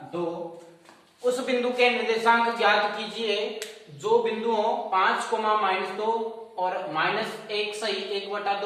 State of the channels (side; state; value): both; identical; correlation 1.00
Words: 2। उस बिंदु के निर्देशांक ज्ञात कीजिए जो बिंदुओं 5, -2 और -1 सही